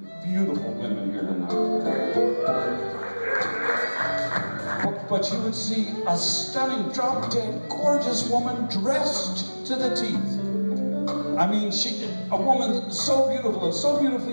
beautiful women here tonight. But you would see a stunning, drop-dead, gorgeous woman dressed to the teeth. I mean, a woman so beautiful and so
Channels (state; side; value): inverted; both; correlation -1.00